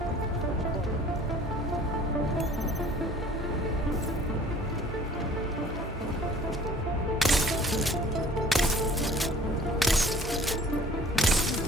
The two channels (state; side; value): normal; both; correlation 0.51